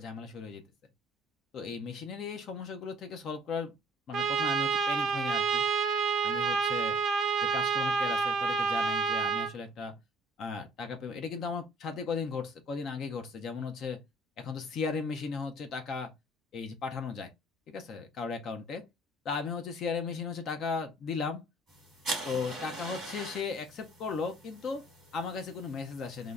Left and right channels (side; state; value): both; normal; correlation 0.54